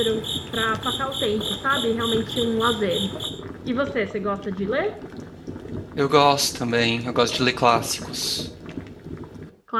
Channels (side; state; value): both; identical; correlation 1.00